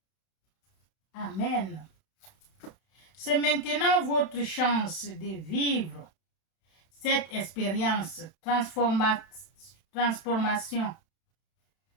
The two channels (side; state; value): right; late; 31 ms